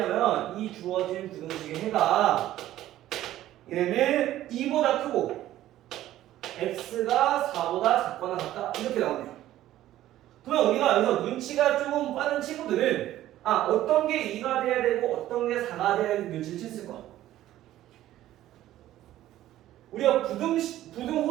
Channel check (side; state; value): left; quieter; 13.8 dB